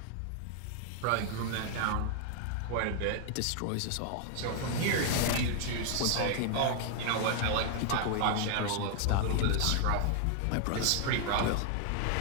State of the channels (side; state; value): both; different; correlation 0.00